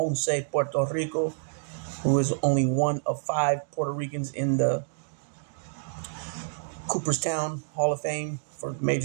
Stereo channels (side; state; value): left; silent; digital silence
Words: Puerto Rico, who is only one of 5 Puerto Ricans in the Cooperstown Hall of Fame for